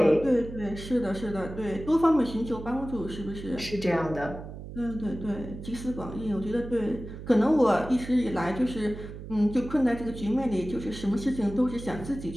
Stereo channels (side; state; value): right; noise; hum, 11 dB below the sound